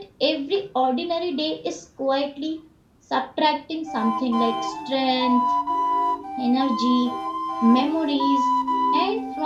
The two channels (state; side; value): identical; both; correlation 1.00